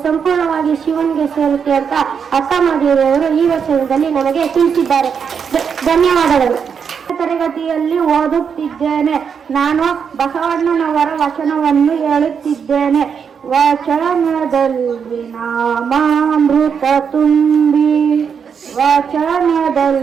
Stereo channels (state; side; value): quieter; left; 6.8 dB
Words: ಸಂಪೂರ್ಣವಾಗಿ ಶಿವನಿಗೆ ಸೇರುತ್ತೆ ಅಂತ ಅಕ್ಕ ಮಹಾದೇವಿಯವರು ಈ ವಚನದಲ್ಲಿ ನನಗೆ ತಿಳಿಸಿದ್ದಾರೆ. ಧನ್ಯವಾದಗಳು. ತರಗತಿಯಲ್ಲಿ ಓದುತ್ತಿದ್ದೇನೆ. ನಾನು ಬಸವಣ್ಣನವರ ವಚನವನ್ನು ಹೇಳುತ್ತಿದ್ದೇನೆ. ವಚನದಲ್ಲಿ ನಾಮಾಮೃತ ತುಂಬಿ,